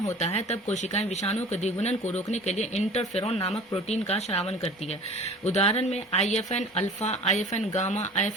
होता है तब कोशिकाएं विषाणु के द्विगुणन को रोकने के लिए इंटरफेरॉन नामक प्रोटीन का स्रावन करती है। उदाहरण में IFN alpha, IFN gamma,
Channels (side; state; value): both; normal; correlation 0.43